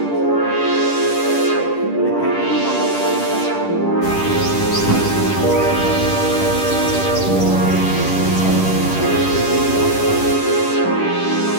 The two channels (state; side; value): late; right; 10 ms